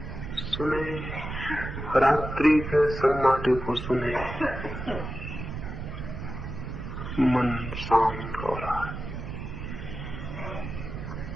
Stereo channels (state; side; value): noise; right; rumble, 7 dB below the sound